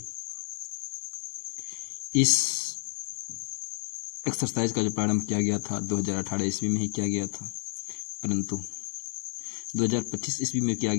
इस एक्सरसाइज का जो प्रारंभ किया गया था 2018 ईस्वी में ही किया गया था, परंतु 2025 ईस्वी में किया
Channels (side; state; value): right; silent; digital silence